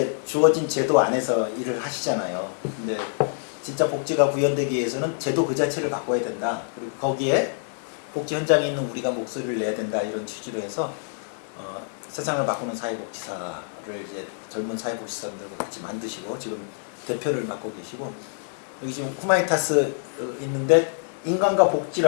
주어진 제도 안에서 일을 하시잖아요. 근데 진짜 복지가 구현되기 위해서는 제도 그 자체를 바꿔야 된다. 그리고 거기에 복지 현장에 있는 우리가 목소리를 내야 된다. 이런 취지로 해서 세상을 바꾸는 사회복지사를 이제 젊은 사회복지사들과 같이 만드시고 지금 대표를 맡고 계시고 여기 지금 후마니타스 있는데 인간과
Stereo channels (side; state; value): right; silent; 61 dB below the other